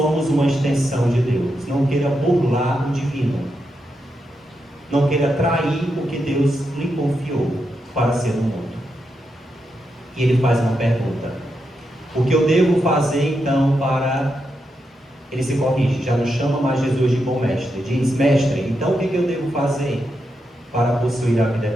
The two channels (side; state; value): both; normal; correlation 0.85